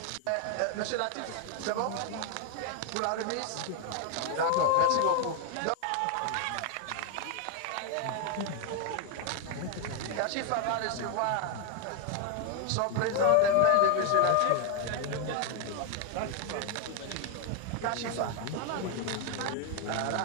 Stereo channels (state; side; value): different; both; correlation 0.01